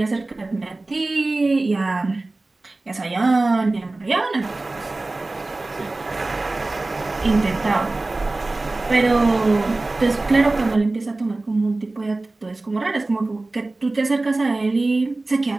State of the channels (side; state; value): left; quieter; 3.1 dB